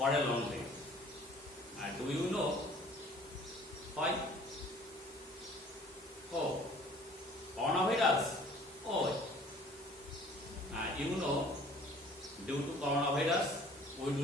a long day. Do you know why? Oh, coronavirus. Oh, you know, due to coronavirus, we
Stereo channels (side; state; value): both; normal; correlation 0.52